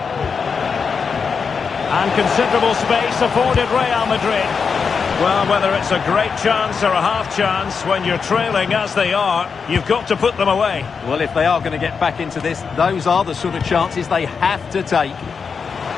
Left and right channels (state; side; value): quieter; right; 5.7 dB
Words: And considerable space afforded Real Madrid. Well, whether it's a great chance or a half chance, when you're trailing as they are, you've got to put them away. Well, if they are going to get back into this, those are the sort of chances they have to take.